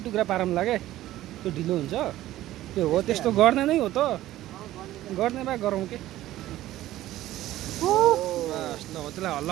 टुक्रा पारौँ लाग्यो त्यो ढिलो हुन्छ त्यो हो त्यस्तो गर्ने नै हो त गर्ने भए गरौँ के बस ल हो त्यसलाई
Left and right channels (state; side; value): quieter; left; 14.8 dB